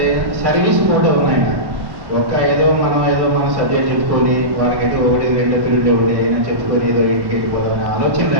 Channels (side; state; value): left; late; 1.1 ms